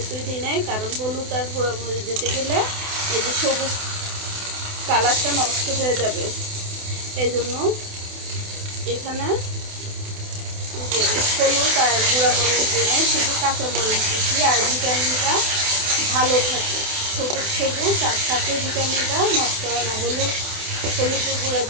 দিই নাই, কারণ হলুদ আর গুঁড়ামরিচ দিতে গেলে এই যে সবুজ কালারটা নষ্ট হয়ে যাবে। এই জন্য এখানে হলুদ আর গুঁড়ামরিচ দিয়ে নেই, শুধু কাঁচামরিচ দিচ্ছি। আর ভিটামিনটা ভালো থাকে, সবুজ সবুজ আর সাথে ভিটামিনটা নষ্ট হয় না। হলুদের গুঁড়া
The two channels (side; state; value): left; late; 28 ms